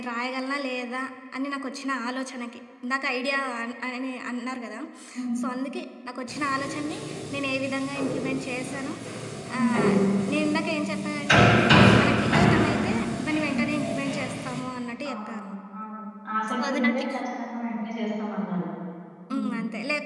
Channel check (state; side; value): identical; both; correlation 1.00